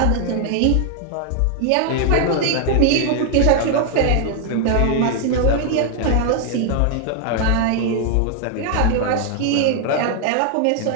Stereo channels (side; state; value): both; different; correlation 0.00